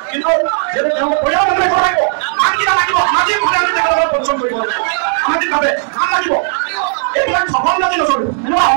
কিন্তু যিহেতু তেওঁলোকে পৰিয়াল মানুহে ক'ব লাগিব নাম কিয় লাগিব সামাজিকভাৱে আমি তেখেতসকলক পৰিশ্ৰম কৰিব লাগিব সামাজিকভাৱে নাম লাগিব এইবিলাক সফল যদি নচলিব এনেকুৱা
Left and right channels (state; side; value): silent; left; 58 dB below the other